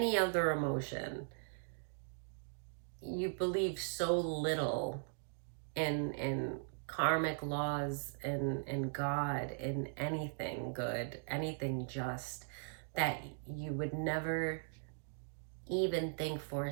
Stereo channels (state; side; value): silent; left; digital silence